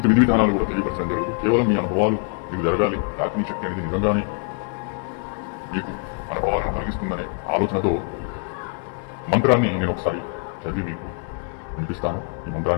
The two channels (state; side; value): quieter; right; 36.9 dB